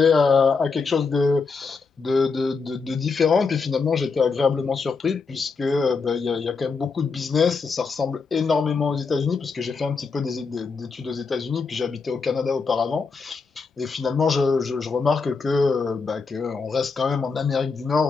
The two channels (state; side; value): quieter; right; 4.8 dB